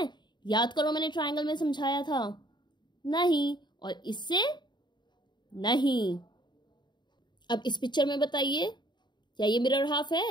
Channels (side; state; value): right; late; 0.22 ms